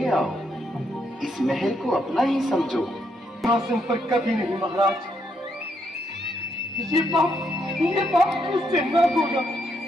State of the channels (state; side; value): normal; both; correlation 0.76